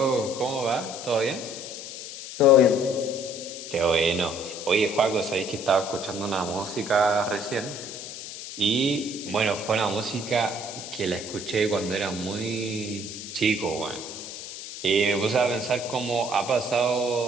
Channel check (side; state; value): left; noise; hiss, 10 dB below the sound